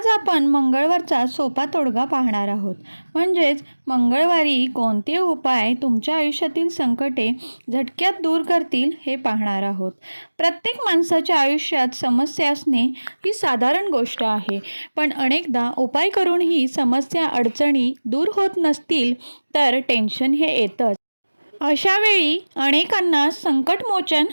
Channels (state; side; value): inverted; both; correlation -1.00